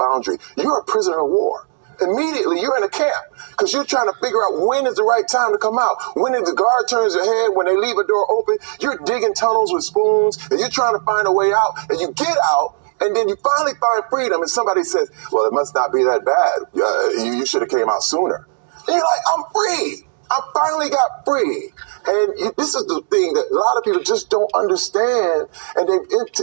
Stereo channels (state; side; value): silent; left; digital silence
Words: you're a prisoner of war. Immediately, you're in a camp because you're trying to figure out when is the right time to come out. When the guard turns their head, when they leave a door open, you're digging tunnels with spoons and you're trying to find a way out, and you get out. And then you finally find freedom, and somebody says, well, it must not be that bad. You should have came out sooner. And you're like, I'm free. I finally got free. And this is the thing that a lot of people just don't understand, and they